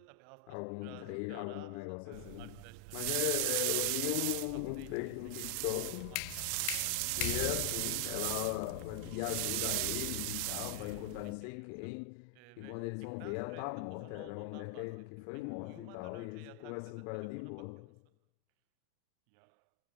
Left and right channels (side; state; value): both; different; correlation 0.00